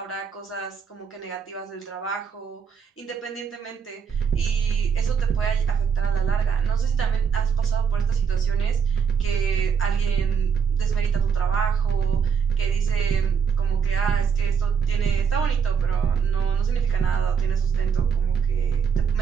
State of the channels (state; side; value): quieter; left; 6.6 dB